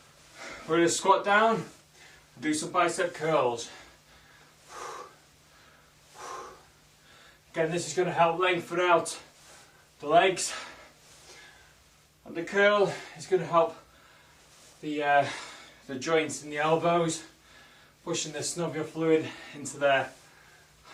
We're going to squat down. Do some bicep curls. Again, this is going to help lengthen out the legs. And the curl is going to help the joints in the elbows, pushing the synovial fluid into there.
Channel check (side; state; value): both; identical; correlation 1.00